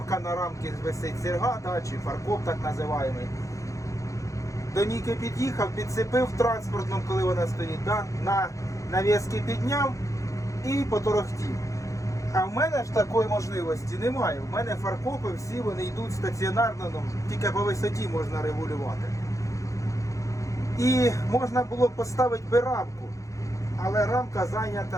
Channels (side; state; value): right; late; 0.15 ms